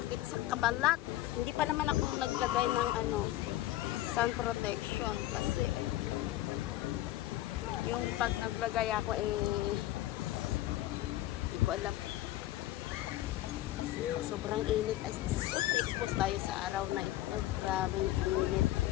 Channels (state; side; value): quieter; right; 15.3 dB